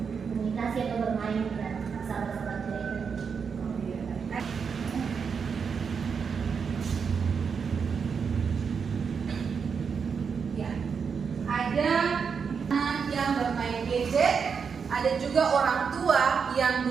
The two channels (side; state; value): left; quieter; 6.1 dB